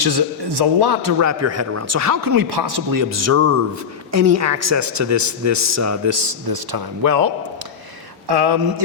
is a lot to wrap your head around. So how can we possibly observe any access to this time? Well,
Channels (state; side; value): quieter; right; 6.8 dB